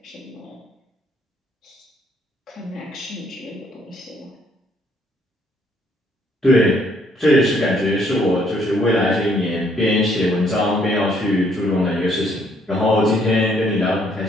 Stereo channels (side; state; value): both; normal; correlation 0.67